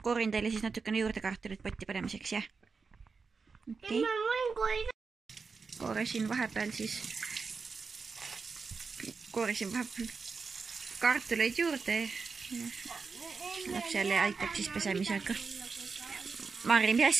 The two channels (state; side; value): quieter; left; 4.9 dB